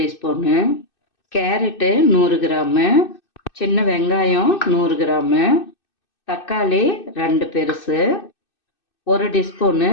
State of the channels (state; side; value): late; right; 2.6 ms